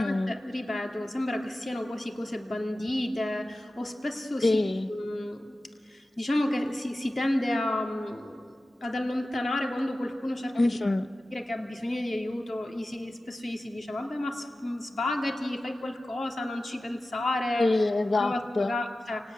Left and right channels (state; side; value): normal; both; correlation 0.95